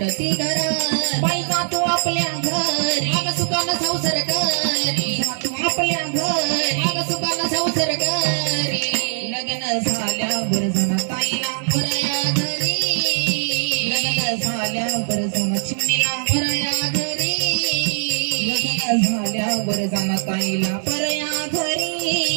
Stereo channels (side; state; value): left; silent; digital silence